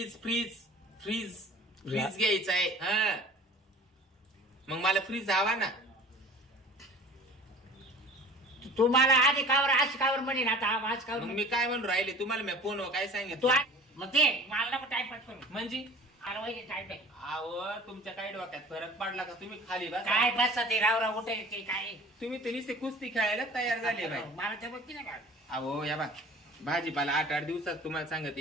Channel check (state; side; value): normal; both; correlation 0.44